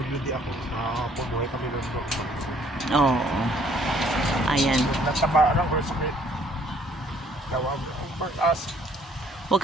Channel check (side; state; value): both; normal; correlation 0.61